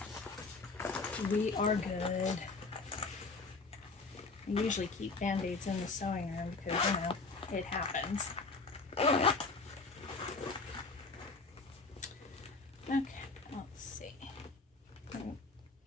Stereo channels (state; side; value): quieter; right; 3.9 dB